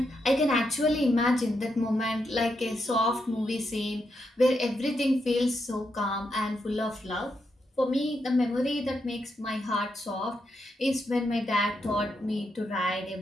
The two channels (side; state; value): both; normal; correlation 0.82